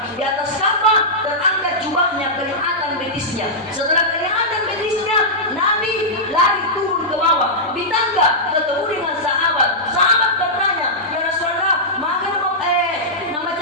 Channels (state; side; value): normal; both; correlation -0.11